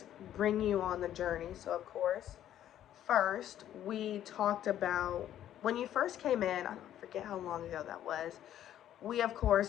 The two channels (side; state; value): right; quieter; 11.4 dB